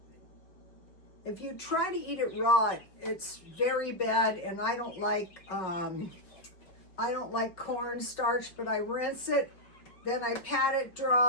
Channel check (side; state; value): right; late; 5.0 ms